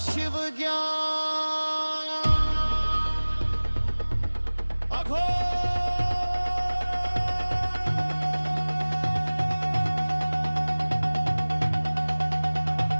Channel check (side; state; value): both; inverted; correlation -1.00